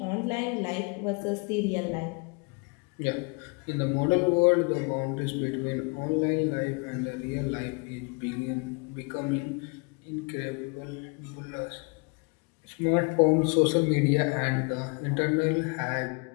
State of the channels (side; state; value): right; quieter; 32.0 dB